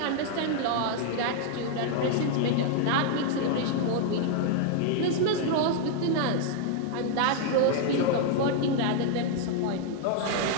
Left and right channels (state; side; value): different; both; correlation 0.00